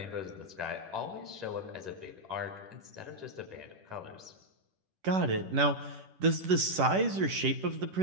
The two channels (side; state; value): left; late; 10 ms